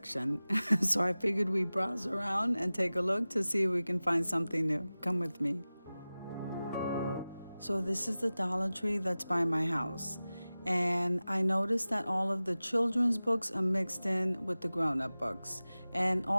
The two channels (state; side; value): inverted; both; correlation -0.97